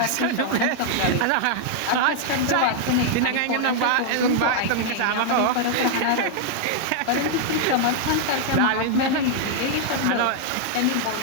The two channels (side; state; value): both; different; correlation 0.00